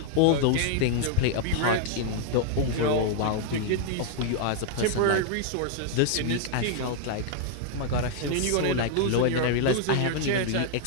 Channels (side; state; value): both; different; correlation 0.00